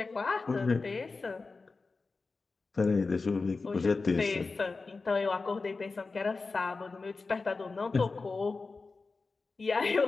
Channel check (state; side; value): quieter; right; 4.0 dB